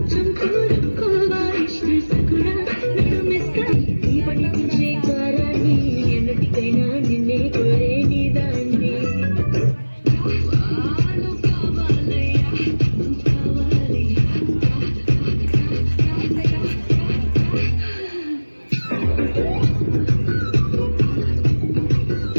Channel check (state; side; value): inverted; both; correlation -1.00